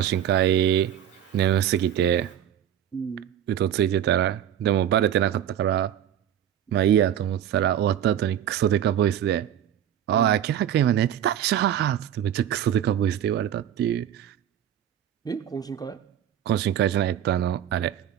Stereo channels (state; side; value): quieter; left; 10.4 dB